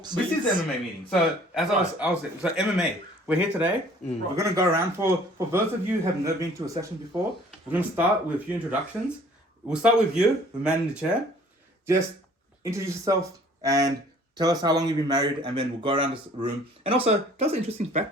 is the MMA meeting. So as I was saying, so MMA. We're here today. We're gonna go around for those of you who have never been to a session before. We're gonna start with a few introductions. We'll start with you, the man in the chair. Just introduce yourself and tell us how long you've been married, and then we'll go around this room. And also, tell us an interesting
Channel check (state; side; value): normal; both; correlation 0.54